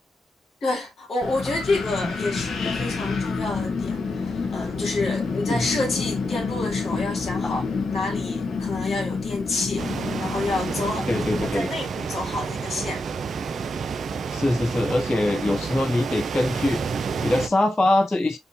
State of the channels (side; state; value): both; normal; correlation 0.86